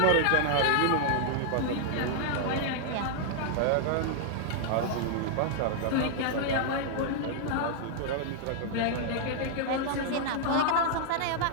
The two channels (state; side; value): different; both; correlation -0.01